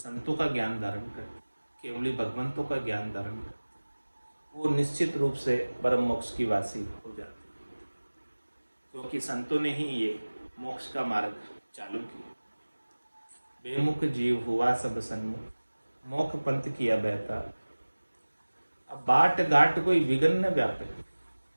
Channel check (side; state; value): both; inverted; correlation -1.00